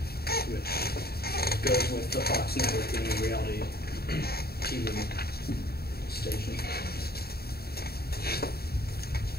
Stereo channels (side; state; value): right; late; 0.45 ms